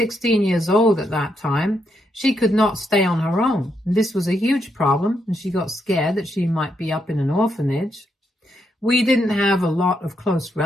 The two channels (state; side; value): normal; both; correlation 0.79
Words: years old at that time, she could not stay on her own. And this was a huge problem, and she got scared that she might be up in an orphanage. We didn't have a lot of close